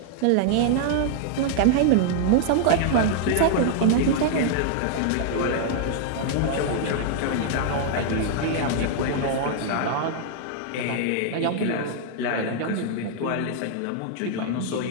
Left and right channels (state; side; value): different; both; correlation -0.01